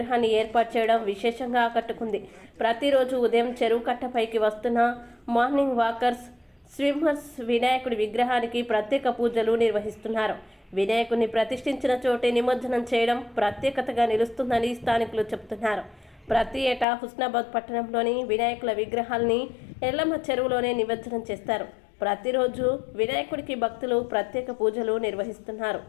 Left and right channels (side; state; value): right; drops out; at 16.9 s